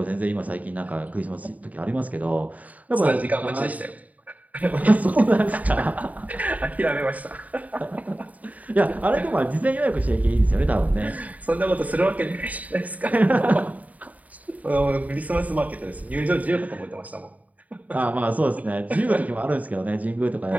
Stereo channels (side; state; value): left; late; 0.073 ms